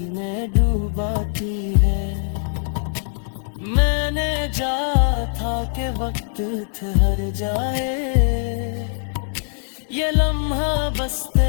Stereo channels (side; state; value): right; silent; 64 dB below the other